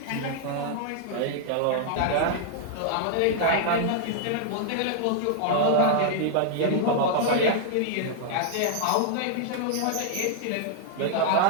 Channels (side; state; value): both; different; correlation -0.01